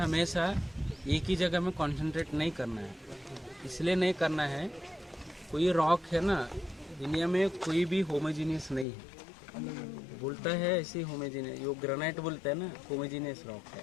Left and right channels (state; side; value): drops out; right; at 8.8 s